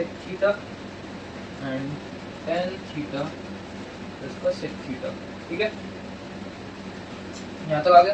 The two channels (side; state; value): both; identical; correlation 1.00